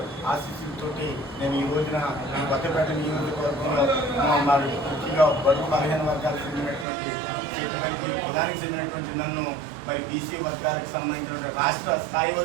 ఆశీస్సులతోటి నేను ఈ రోజున ఈ కొత్తపేట నియోజకవర్గంలో మరి ముఖ్యంగా బడుగు బలహీన వర్గాలకు చెందినటువంటి కులానికి చెందినటువంటి నన్ను మరి బీసీ వర్గాలకు సంబంధించిన రాష్ట్ర స్థాయి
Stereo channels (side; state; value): left; drops out; at 6.9 s